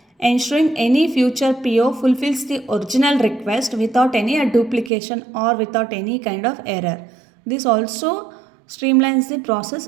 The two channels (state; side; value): drops out; left; at 4.9 s